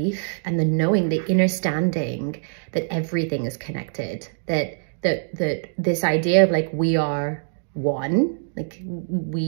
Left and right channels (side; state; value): left; silent; digital silence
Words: and the knowing, the understanding that everything is connected, that this idea of like we are one, like